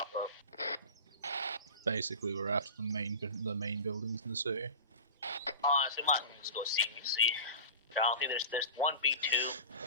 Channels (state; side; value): inverted; both; correlation -0.32